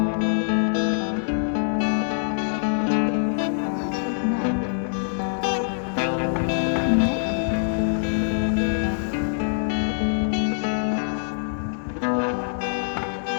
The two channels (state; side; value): silent; right; digital silence